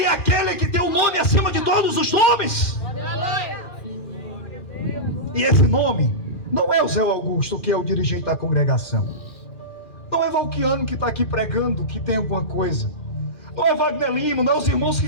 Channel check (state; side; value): late; right; 2.4 ms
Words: é aquele que tem o nome acima de todos os nomes. E esse nome não é o Zé Augusto, que é o dirigente da congregação. Não é Valquiano que está aqui pregando, que tem alguma coisa. Não é Wagner Lima, não é os irmãos